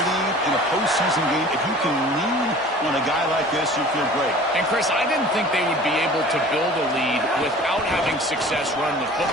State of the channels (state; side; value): normal; both; correlation 0.45